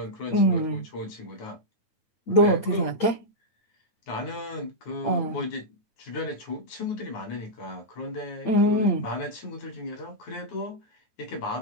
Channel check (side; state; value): right; late; 9.5 ms